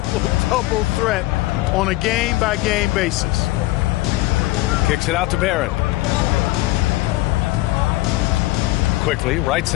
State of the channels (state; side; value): quieter; right; 18.7 dB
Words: threat on a game-by-game basis. Kicks it out to Barrett. Quickly, right